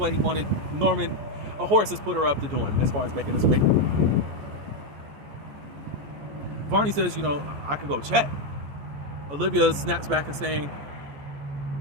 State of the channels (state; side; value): late; left; 14 ms